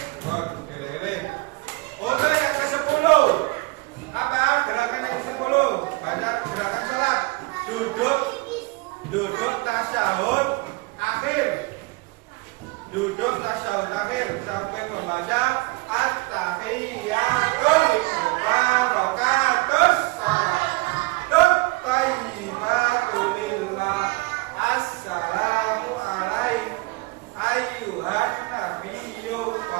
Untuk yang ke-10, apa gerakan yang ke-10? Baca gerakan salat. Duduk tasyahud akhir. membaca at-tahiyatul mubarakatus salatut thayyibatul lillah assalamu alaikum ayyuhan nabiyyu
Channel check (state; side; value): quieter; left; 24.6 dB